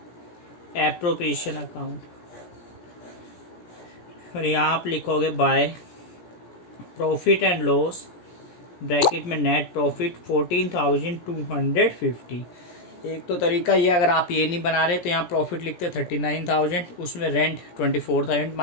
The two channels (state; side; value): late; right; 17 ms